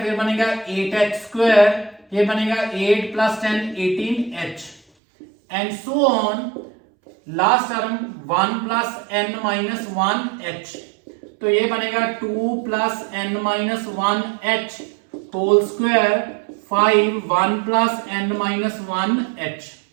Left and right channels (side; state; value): left; drops out; at 4.8 s